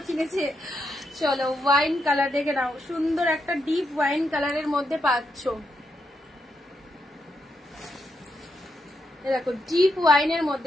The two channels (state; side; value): normal; both; correlation 0.82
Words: কিনেছে। চলো, ওয়াইন কালার দেখে নাও, সুন্দর একটা ডিপ ওয়াইন কালারের মধ্যে পাচ্ছ। দেখো ডিপ ওয়াইনের